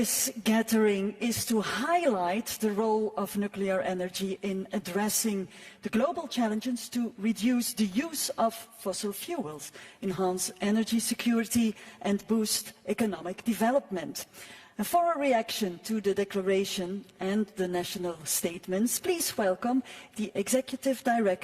gathering is to highlight the role of nuclear energy in addressing the global challenges to reduce the use of fossil fuels, enhance energy security, and boost economic development. And for a reaction to the declaration and the national statements, please welcome the Executive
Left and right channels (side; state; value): both; identical; correlation 1.00